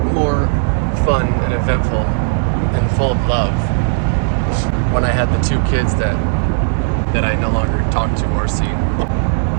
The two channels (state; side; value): silent; left; digital silence